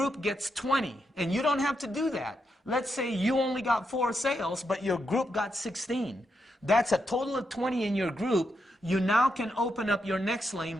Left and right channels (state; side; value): normal; both; correlation 0.83